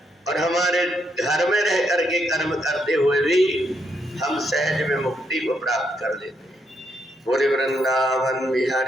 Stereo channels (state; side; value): normal; both; correlation 0.77